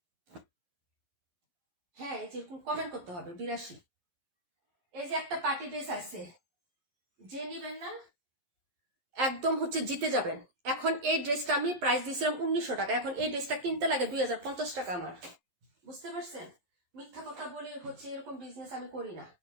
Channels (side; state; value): left; late; 11 ms